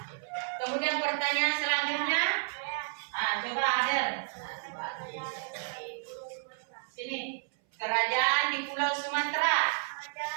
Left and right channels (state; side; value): silent; left; 57 dB below the other